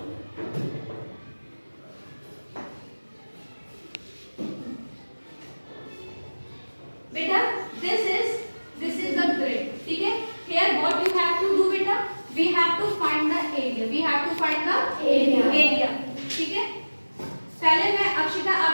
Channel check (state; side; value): inverted; both; correlation -1.00